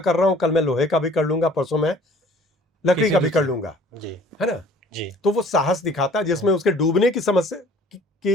रहा हूं, कल मैं लोहे का भी कर लूंगा, परसों मैं लकड़ी का भी कर लूंगा, जी। है ना। जी। तो वो साहस दिखाता है जिसमें उसके डूबने की समस्या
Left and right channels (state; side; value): normal; both; correlation 0.52